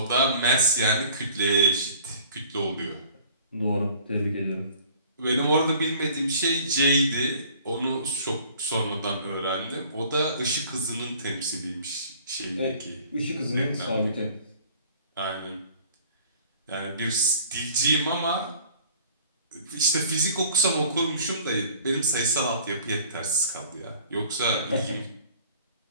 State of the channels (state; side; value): inverted; both; correlation -0.51